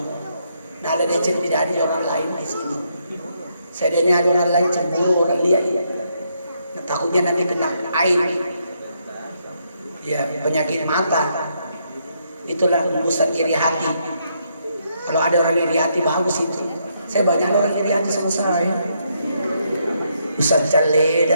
Nah ada decen tidak ada orang lain di sini. Saya ini ada orang lain cemburu, orang lihat. Takutnya nanti kena air, ya penyakit mata. Itulah hembusan iri hati. Kalau ada orang iri hati bagus itu. Saya banyak orang iri hati sama saya. Ustaz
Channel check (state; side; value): inverted; both; correlation -0.76